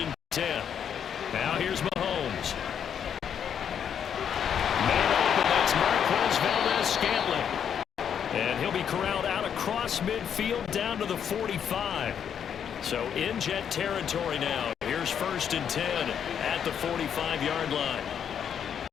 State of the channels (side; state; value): right; quieter; 8.3 dB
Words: and 10. Now here's Mahomes. Man open, that's Marquez Valdes-Scantling. And he'll be corralled out across midfield down to the 45. So in Jet territory now. Here's 1st and 10 at the 45-yard line.